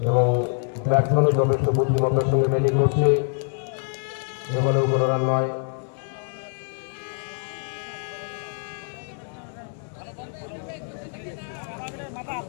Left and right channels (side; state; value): right; silent; 62 dB below the other